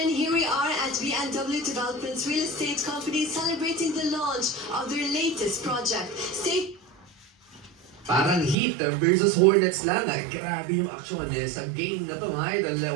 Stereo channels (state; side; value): drops out; left; at 8.6 s